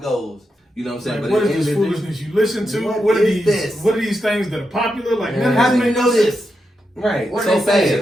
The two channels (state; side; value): normal; both; correlation 0.86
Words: goes. You know what I'm saying? Like, what is this foolishness you listen to? What are these things that are popular? Like, how do you know this? Right. What are they